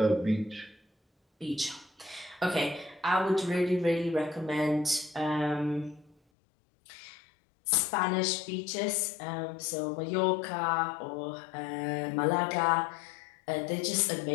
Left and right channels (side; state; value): right; drops out; at 6.2 s